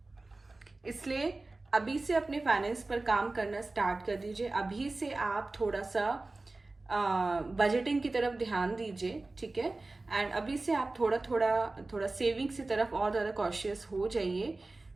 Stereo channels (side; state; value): left; quieter; 3.2 dB